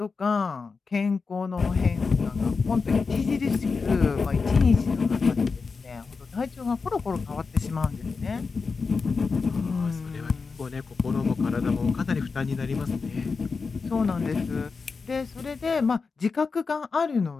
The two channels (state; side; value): quieter; right; 4.7 dB